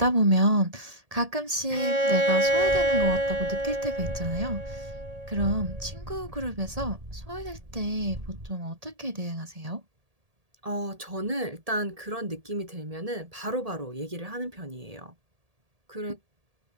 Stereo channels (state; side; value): late; left; 1.8 ms